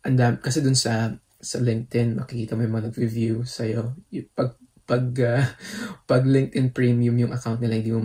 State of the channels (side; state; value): both; identical; correlation 1.00